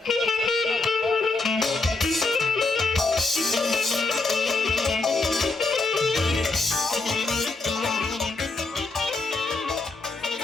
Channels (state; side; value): quieter; right; 3.5 dB